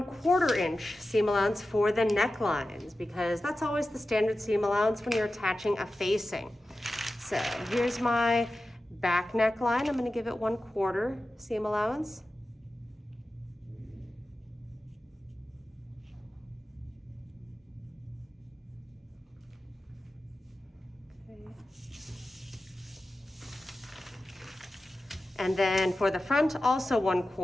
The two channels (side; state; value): both; normal; correlation 0.94